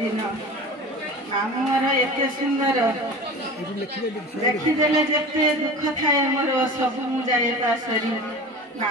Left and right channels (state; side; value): normal; both; correlation 0.35